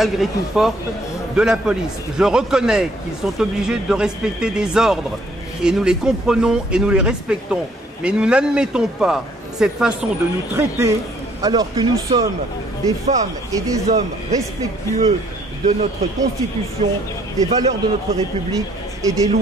tout forte, de la police. Je reconnais qu'ils sont obligés de respecter des ordres et nous les comprenons et nous les respectons, mais nous n'admettons pas cette façon de nous traiter alors que nous sommes des femmes et des hommes respectueux de notre Constitution, des valeurs de notre République et des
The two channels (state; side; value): normal; both; correlation 0.64